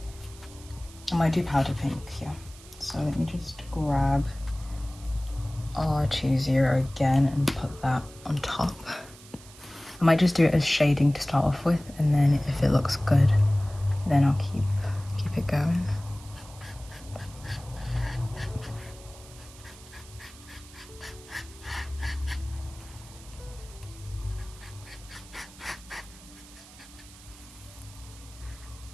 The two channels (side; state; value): right; noise; hiss, 20 dB below the sound